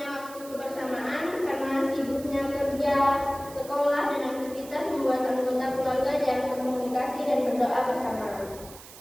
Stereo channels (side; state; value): right; noise; hiss, 17 dB below the sound